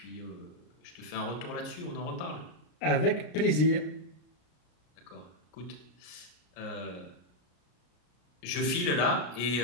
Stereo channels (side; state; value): right; late; 34 ms